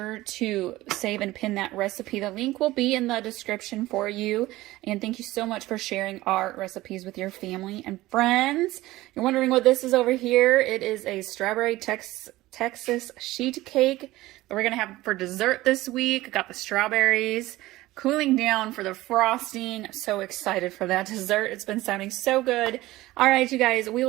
to save and pin that recipe. The link will be in the description for you. And thank you so much for sharing our recipes with your family and friends. You're wondering what this is over here? It is a strawberry Texas sheet cake that we're going to have for dessert this week. Got the strawberries cooling down for the frosting. I'm so excited for that dessert. It's been sounding so good. All right, you guys, we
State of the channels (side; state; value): left; quieter; 17.7 dB